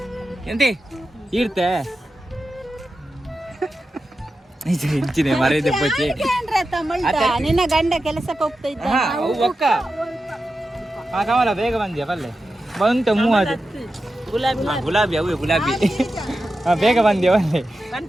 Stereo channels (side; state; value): both; normal; correlation 0.91